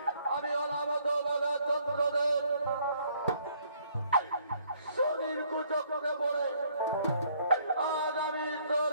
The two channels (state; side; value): inverted; both; correlation -0.65